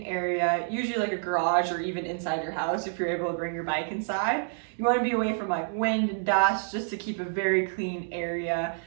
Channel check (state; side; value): silent; left; digital silence